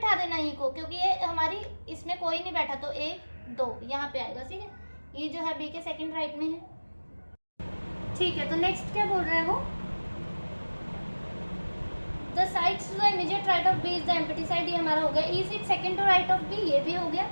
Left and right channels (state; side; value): inverted; both; correlation -1.00